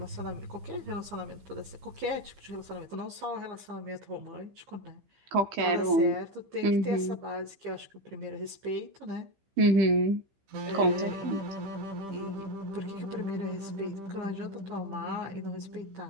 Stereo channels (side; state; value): left; late; 15 ms